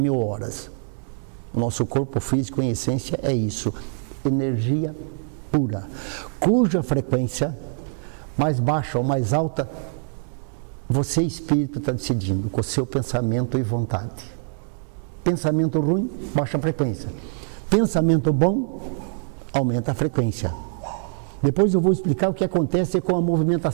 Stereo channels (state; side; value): silent; left; digital silence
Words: horas. O nosso corpo físico, em essência, é isso. Energia pura, cuja frequência, mais baixa ou mais alta, você, espírito, está decidindo com o seu pensamento e vontade. Pensamento ruim, baixa a frequência. Pensamento bom, aumenta a frequência. Depois eu vou explicar o que acontece com a